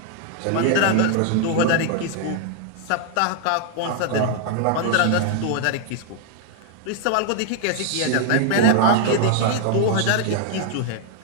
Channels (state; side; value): different; both; correlation 0.00